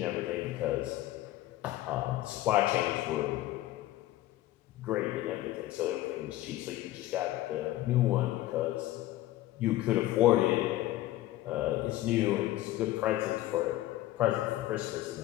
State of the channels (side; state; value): right; quieter; 15.5 dB